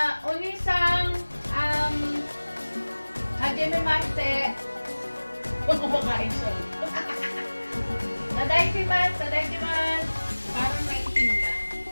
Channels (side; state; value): both; inverted; correlation -1.00